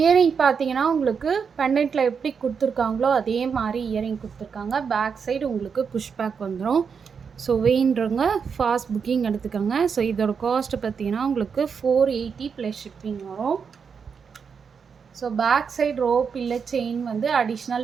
பார்த்தீங்கன்னா உங்களுக்கு பெண்டன்ட்டில் எப்படி கொடுத்துருக்காங்களோ அதே மாதிரி இயரிங் கொடுத்துருக்காங்க. பேக் சைடு உங்களுக்கு புஷ் பேக் வந்துடும். ஸோ வேணுன்றவங்க ஃபாஸ்ட் புக்கிங் எடுத்துக்கோங்க. ஸோ இதோட காஸ்ட்டு பார்த்தீங்கன்னா உங்களுக்கு 480 ப்ளஸ் ஷிப்பிங் வரும். ஸோ பேக் சைடு ரோப் இல்லை செயின் வந்து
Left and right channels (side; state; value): left; quieter; 6.2 dB